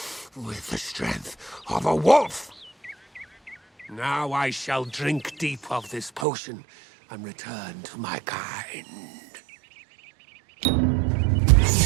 with the strength of a wolf. Now I shall drink deep of this potion and return to my kind.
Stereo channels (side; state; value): left; drops out; at 6.2 s